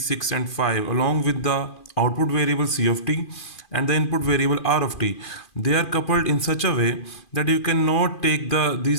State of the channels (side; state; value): right; late; 2.4 ms